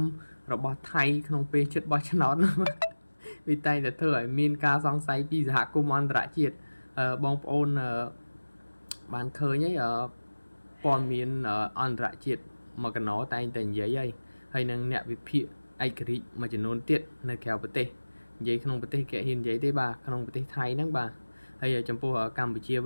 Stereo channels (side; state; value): both; inverted; correlation -1.00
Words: របស់ថៃក្នុងពេលជិតបោះឆ្នោតវាតែងតែធ្វើឲ្យមានការសង្ស័យពីសហគមន៍អន្តរជាតិបងប្អូនបានឃើញហើយព័ត៌មានអន្តរជាតិមកកណោតែងតែនិយាយហើយនឹងអ្នកវិភាគឯករាជ្យមួយចំនួនទៀតនៅក្រៅប្រទេសនិយាយក្នុងប្រទេសគេហ៊ាននិយាយទេបាទក្នុងប្រទេសថៃហ្នឹងបាទហើយចំពោះកម្ពុជា